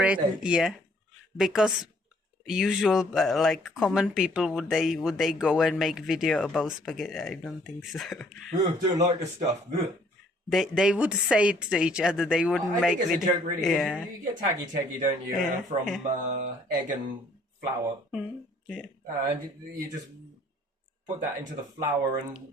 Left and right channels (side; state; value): both; normal; correlation 0.61